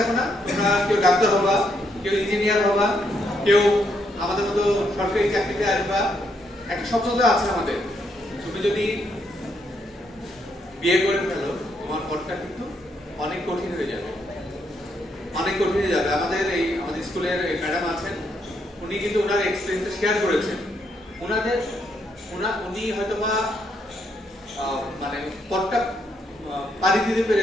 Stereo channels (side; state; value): both; normal; correlation 0.76